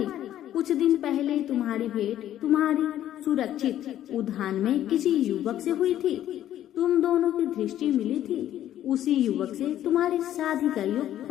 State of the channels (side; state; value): right; quieter; 12.0 dB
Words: कुछ दिन पहले तुम्हारी भेंट तुम्हारी सुरक्षित उद्यान में किसी युवक से हुई थी। तुम दोनों की दृष्टि मिली थी। उसी युवक से तुम्हारी शादी का योग